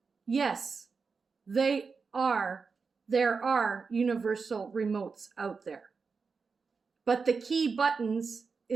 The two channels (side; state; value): left; quieter; 5.0 dB